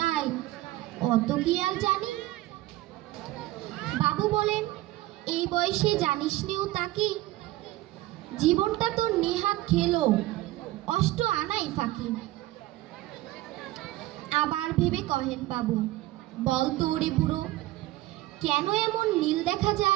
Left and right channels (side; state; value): left; quieter; 17.2 dB